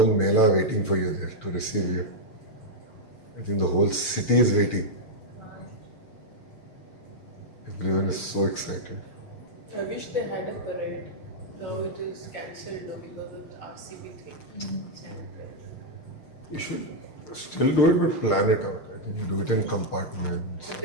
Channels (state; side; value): late; right; 6.6 ms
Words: mela waiting for you there to receive you. I think the whole city is waiting. Everyone is so excited. I wish they had a parade. Now it is cancelled now because of the RCB thing. You should still do it, but plan it out. I think you do it in compartments.